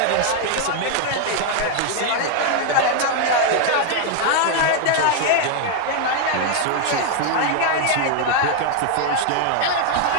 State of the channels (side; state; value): both; different; correlation 0.00